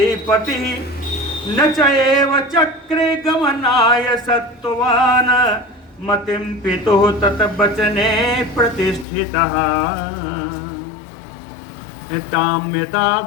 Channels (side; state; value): right; drops out; at 9.1 s